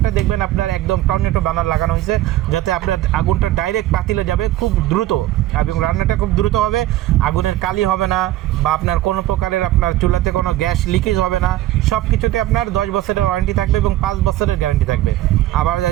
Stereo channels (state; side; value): quieter; left; 14.7 dB